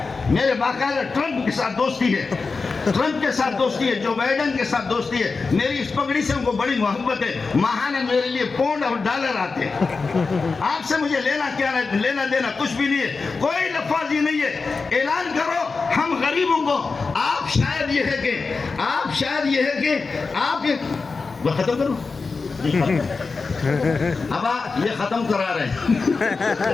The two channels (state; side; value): quieter; right; 4.4 dB